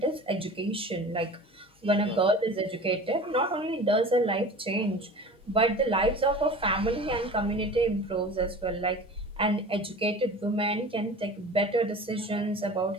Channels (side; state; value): both; normal; correlation 0.39